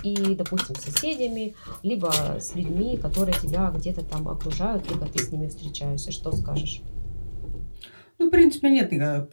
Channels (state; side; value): inverted; both; correlation -1.00